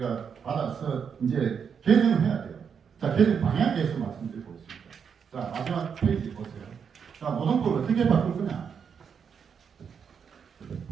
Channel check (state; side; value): quieter; left; 6.9 dB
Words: 받아서 이제 개정을 해야 돼요. 자, 개정 방향에 대해서 말씀드리고 있습니다. 자, 마지막 페이지 보세요. 자, 노동법을 어떻게 바꿀 거냐?